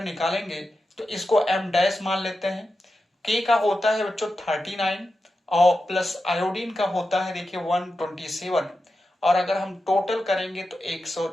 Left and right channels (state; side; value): normal; both; correlation 0.90